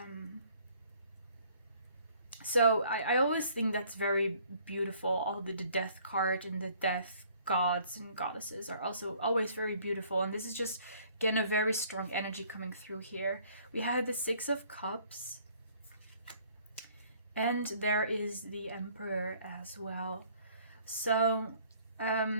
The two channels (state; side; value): inverted; both; correlation -0.59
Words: So I always think that's very beautiful. All the death card and the death gods and goddesses are also always very beautiful. And this is just, again, a very strong energy coming through here. We have the Six of Cups. And there is the Emperor as well. So,